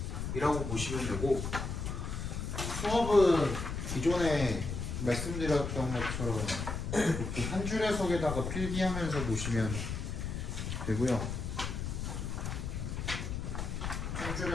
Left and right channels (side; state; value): left; noise; rumble, 4 dB below the sound